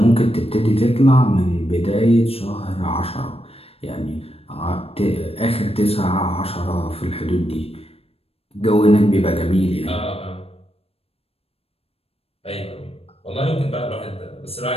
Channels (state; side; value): late; right; 0.28 ms